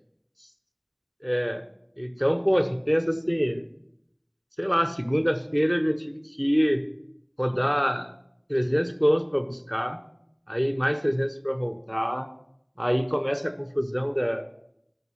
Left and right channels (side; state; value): both; identical; correlation 1.00